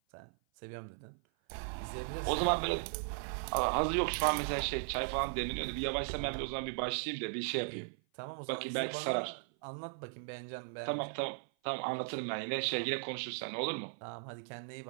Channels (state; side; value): silent; left; 53 dB below the other